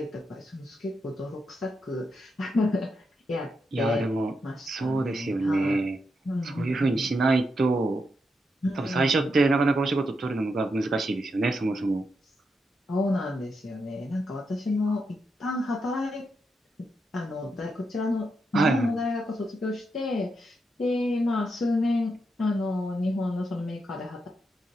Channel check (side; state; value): both; normal; correlation 0.84